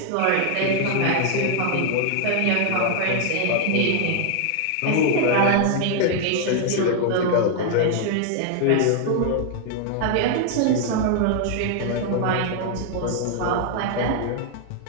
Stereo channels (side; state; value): both; different; correlation 0.00